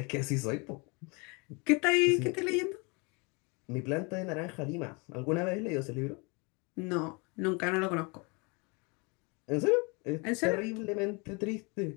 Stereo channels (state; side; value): quieter; right; 30.2 dB